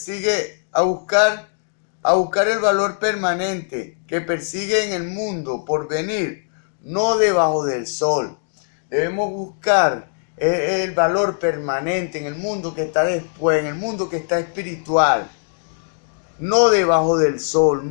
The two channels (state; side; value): silent; right; digital silence